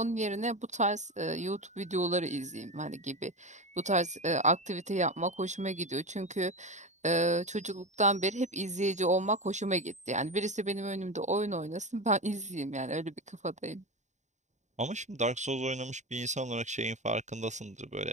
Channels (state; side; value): late; left; 0.34 ms